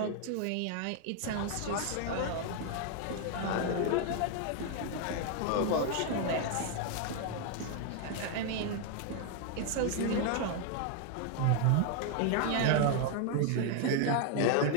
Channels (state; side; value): different; both; correlation 0.00